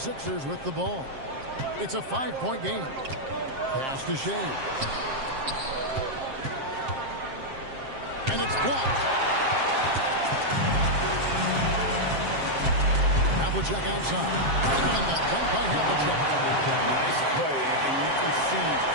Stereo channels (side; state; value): left; late; 7.5 ms